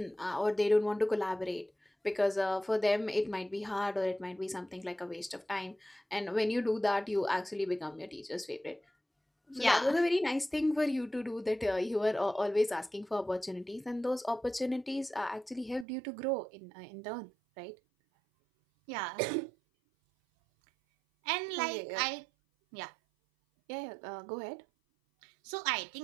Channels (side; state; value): left; drops out; at 15.9 s